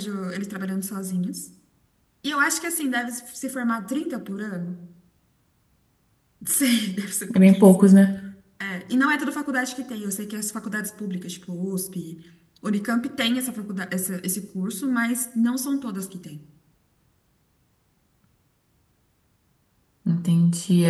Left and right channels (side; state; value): both; identical; correlation 1.00